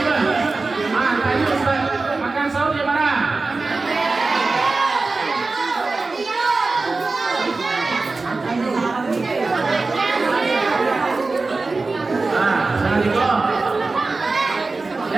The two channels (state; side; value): quieter; left; 3.7 dB